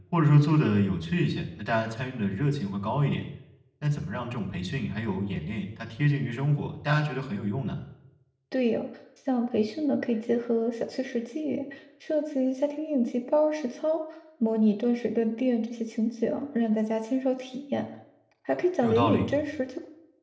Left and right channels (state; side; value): identical; both; correlation 1.00